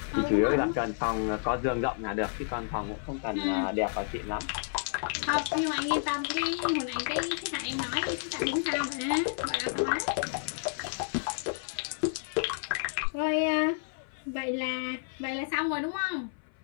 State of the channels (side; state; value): right; silent; 56 dB below the other